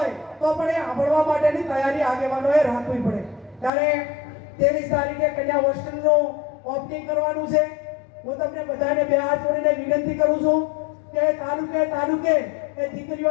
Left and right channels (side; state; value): right; drops out; at 3.7 s